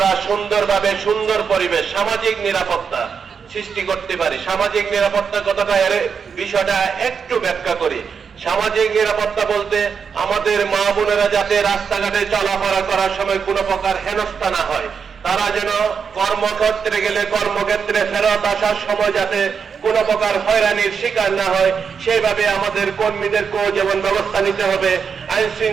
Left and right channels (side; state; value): left; quieter; 6.3 dB